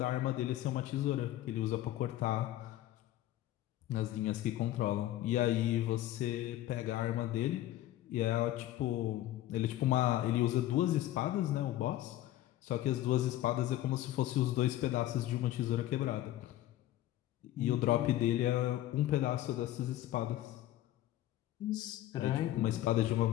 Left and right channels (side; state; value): right; quieter; 14.2 dB